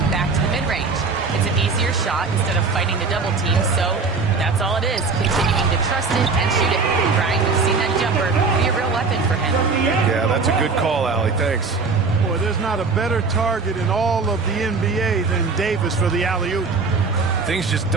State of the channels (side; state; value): left; quieter; 4.4 dB